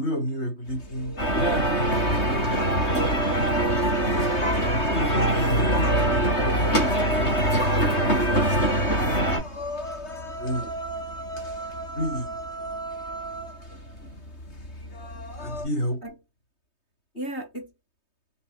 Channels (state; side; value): late; right; 3.2 ms